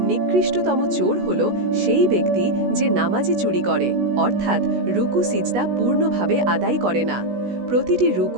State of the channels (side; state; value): left; late; 16 ms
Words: নিকৃষ্টতম চোর হল সেই ব্যক্তি যে নামাজে চুরি করে, অর্থাৎ রুকু সিজদা পূর্ণভাবে আদায় করে না। প্রতিটি